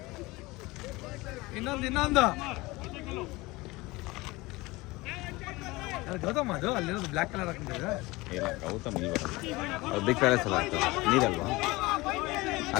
ಇನ್ನೊಂದು ಗೌತಮ್ ಅದು ಅಲ್ಲಿರೋದು ಬ್ಲ್ಯಾಕ್ ಕಲರ್ ಹಾಕೊಂಡಿದ್ರೆ ಇಲ್ಲ ಗೌತಮ್ ಇಲ್ಲಿ ಬರೋದು ಅದು ಬಿಗ್ ಪ್ಯಾಲೇಸ್ ಎಲ್ಲ ಆಗ್ತದೆ ನೀರಲ್ವಾ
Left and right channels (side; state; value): right; quieter; 21.8 dB